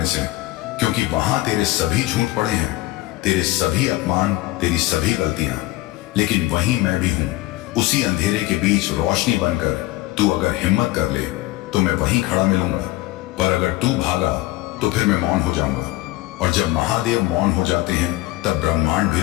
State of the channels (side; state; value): right; quieter; 18.1 dB